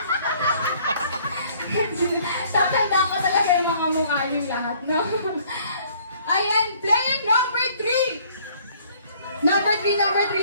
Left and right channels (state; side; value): inverted; both; correlation -0.59